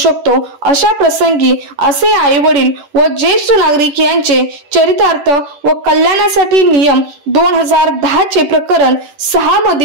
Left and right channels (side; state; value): left; late; 10 ms